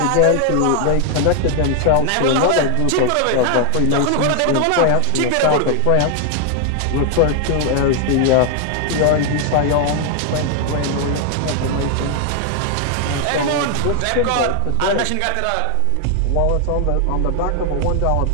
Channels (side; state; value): both; different; correlation 0.00